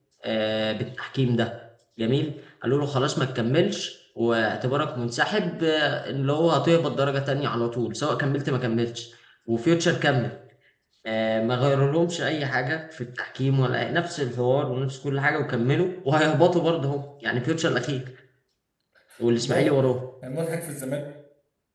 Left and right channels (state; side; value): identical; both; correlation 1.00